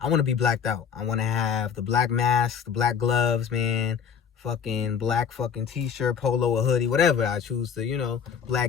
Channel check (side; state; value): right; quieter; 7.3 dB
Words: want to be blacked out. I want to have the black mask, the black gloves, man. fucking black fucking t-shirt, polo, or hoodie, whatever I choose to,